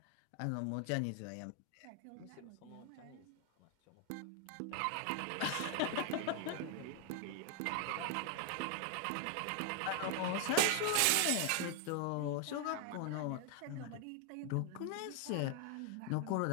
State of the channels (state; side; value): different; both; correlation 0.00